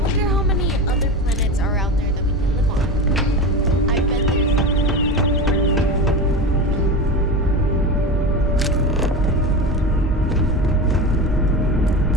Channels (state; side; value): normal; both; correlation 0.25